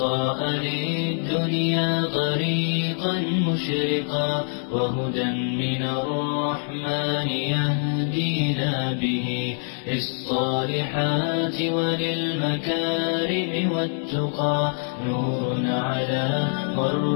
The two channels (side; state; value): right; silent; 62 dB below the other